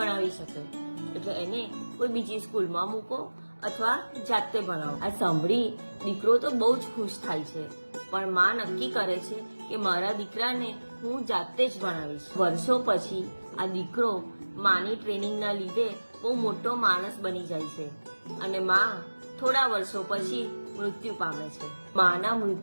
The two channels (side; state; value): both; inverted; correlation -1.00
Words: શકે, એટલે એને કોઈ બીજી સ્કૂલમાં મૂકો અથવા જાતે ભણાવો. આ સાંભળી દીકરો તો બહુ જ ખુશ થાય છે, પણ માં નક્કી કરે છે કે મારા દીકરાને હું જાતે જ ભણાવીશ. વર્ષો પછી આ દીકરો માની ટ્રેનિંગના લીધે બહુ મોટો માણસ બની જાય છે અને માં થોડા વર્ષો પછી મૃત્યુ પામે છે. માના